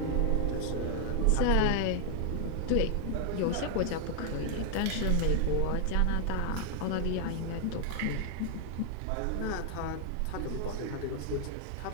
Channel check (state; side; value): different; both; correlation 0.00